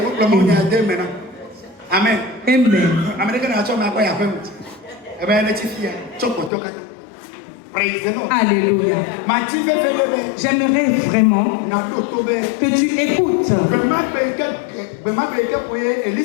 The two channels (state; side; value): drops out; right; at 6.5 s